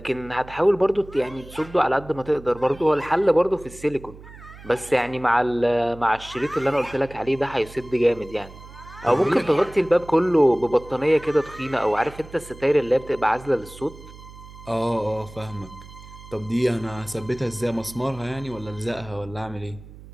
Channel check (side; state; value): right; noise; hum, 18 dB below the sound